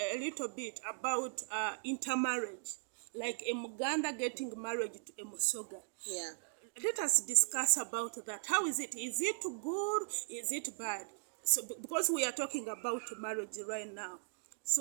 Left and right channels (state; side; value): silent; left; digital silence